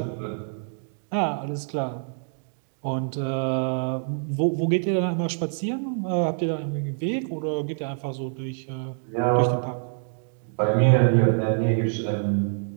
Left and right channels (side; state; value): left; silent; 61 dB below the other